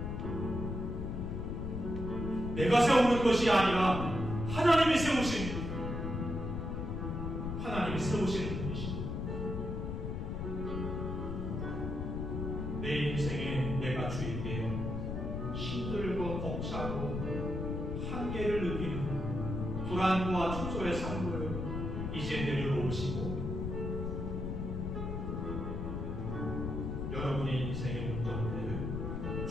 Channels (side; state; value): left; noise; rumble, 3 dB below the sound